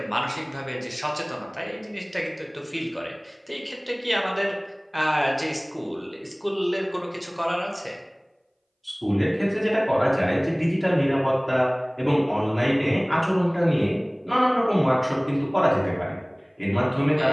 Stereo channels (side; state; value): both; identical; correlation 1.00